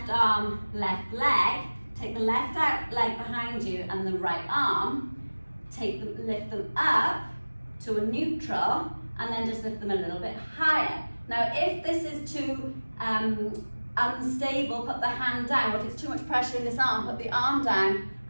arm, left leg. Take the left leg behind you and the right arm. Lift them up to a neutral, and then just lift them a little bit higher. Now, if this is too unstable, put the hand down. Or if it's too much pressure in this arm, put the arm down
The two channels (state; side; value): inverted; both; correlation -1.00